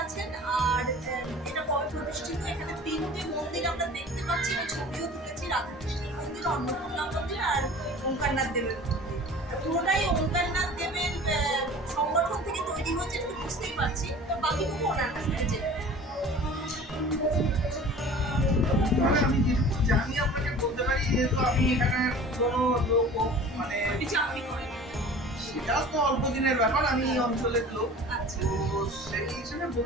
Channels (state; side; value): normal; both; correlation 0.42